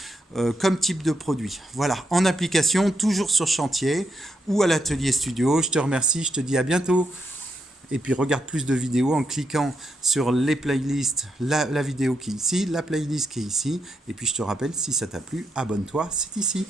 comme type de produit. Voilà, en application, toujours sur chantier ou à l'atelier studio. Je te remercie, je te dis à bientôt. Et puis regarde plus de vidéos en cliquant sur les playlists, la vidéo qui est ici, la playlist qui est ici. Et puis je te rappelle, si ça t'a plu, abonne-toi, c'est ici.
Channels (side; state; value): both; normal; correlation 0.81